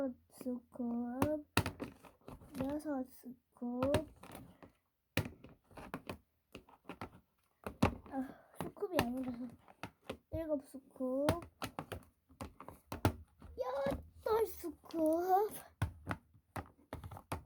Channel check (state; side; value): identical; both; correlation 1.00